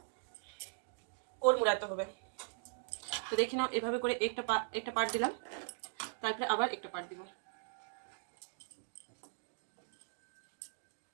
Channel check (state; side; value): silent; left; digital silence